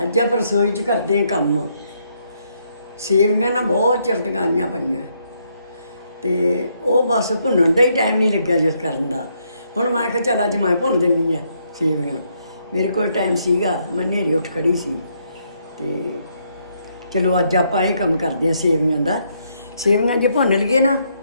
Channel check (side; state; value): both; inverted; correlation -0.74